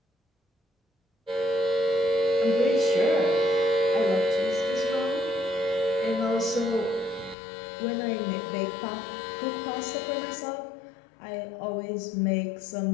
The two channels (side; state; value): right; drops out; at 7.4 s